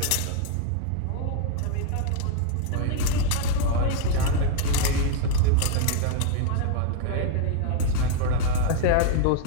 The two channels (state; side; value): different; both; correlation 0.00